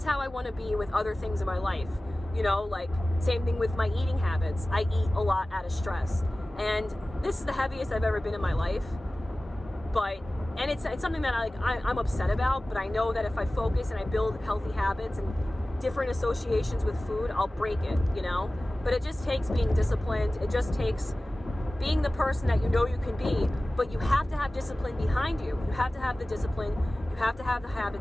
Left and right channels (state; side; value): normal; both; correlation 0.97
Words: how I want to be with other things in my life. Same thing with my eating habits. I eat a lot out of stress. And this is the heaviest I've ever been in my life. And it's something that I'm upset about, but I know that if I focus and I build healthy habits and different associations with food, I'll break it, you know? But it just takes being disciplined. It just takes being the person that you know you can be, but you have to have discipline behind you. You have to have the discipline. You have to have the